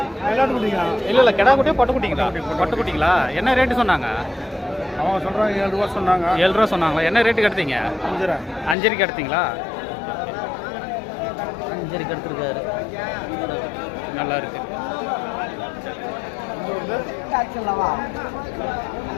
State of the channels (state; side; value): drops out; right; at 8.8 s